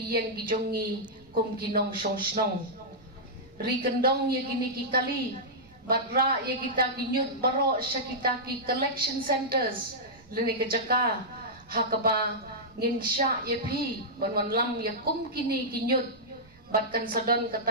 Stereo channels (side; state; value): right; noise; rumble, 27 dB below the sound